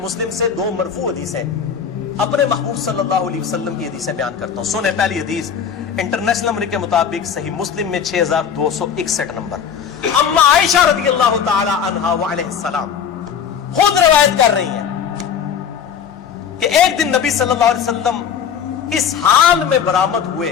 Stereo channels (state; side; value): quieter; right; 7.6 dB